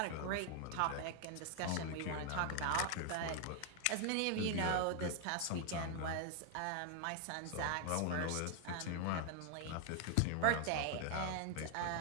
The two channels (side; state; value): both; different; correlation 0.00